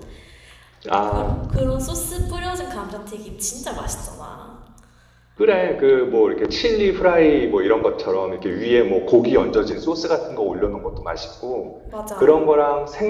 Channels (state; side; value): identical; both; correlation 1.00